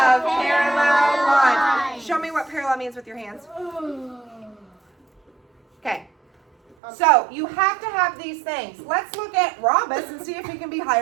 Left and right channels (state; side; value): drops out; left; at 6.8 s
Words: parallel lines. Show me what parallel means with your hands. Okay. So, you have to have these things. Let's look at rhombus and see if he can be